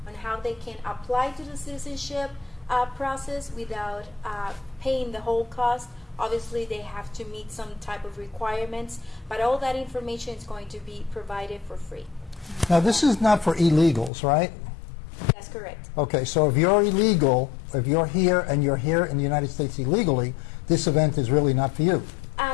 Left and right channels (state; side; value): drops out; right; at 14.1 s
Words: on how they can apply to the citizenship process without paying the whole cost. Obviously, they have to meet some type of requirements, but all that information is going to be provided for free. Now, this is not for illegals, right? That's correct. Okay, so if you're illegal, if you're here and you're here in the United States illegally, this event is really not for you.